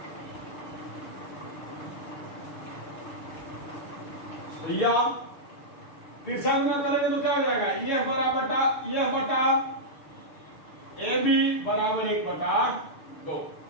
या फिर से अंग्रेज करेंगे तो क्या हो जाएगा, EF बटा AB बराबर 1 बटा 2।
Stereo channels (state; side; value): late; right; 6.8 ms